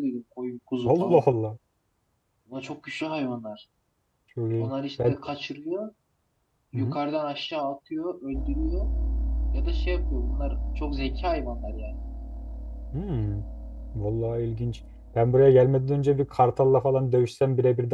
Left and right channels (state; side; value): identical; both; correlation 1.00